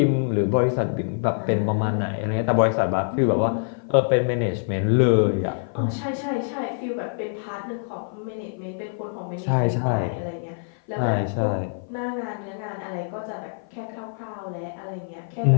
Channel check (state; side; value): silent; right; 55 dB below the other